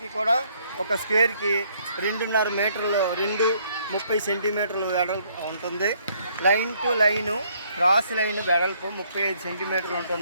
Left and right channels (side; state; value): both; inverted; correlation -0.66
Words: కూడా ఒక స్క్వేర్కి 2.5 మీటర్లు, 2.30 సెంటీమీటర్లు వెడల్పు ఉంటుంది. Line to line cross line వెడల్పు 35 సెంటీమీటర్లు